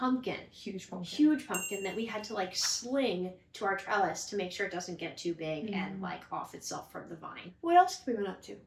Huge pumpkin that we had to sling to our trellis to make sure it doesn't get too big and off itself from the vine. What else have we been up to?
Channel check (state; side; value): identical; both; correlation 1.00